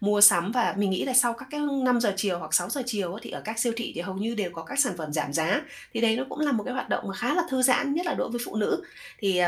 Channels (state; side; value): identical; both; correlation 1.00